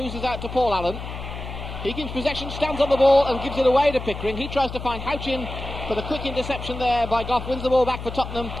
out to Paul Allen. He keeps possession, stands on the ball and gives it away to Pickering. He tries to find Houchen for the quick interception there by Goff, wins the ball back for Tottenham.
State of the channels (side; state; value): left; noise; hum, 9 dB below the sound